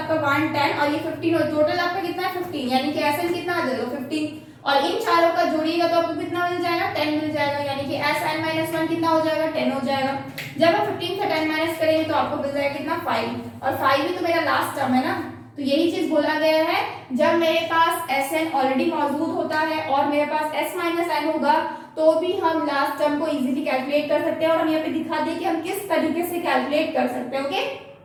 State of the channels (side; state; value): both; identical; correlation 1.00